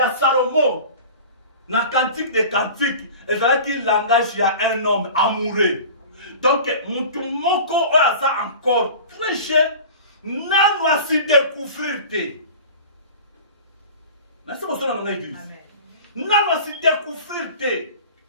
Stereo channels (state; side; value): inverted; both; correlation -0.38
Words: Salomon na cantique des cantiques, ezalaki langage ya un homme amoureux. Donc mutu moko aza encore très jeune, nanu asi découvrir te. Merci beaucoup dans l'église. Nanu asi découvrir te.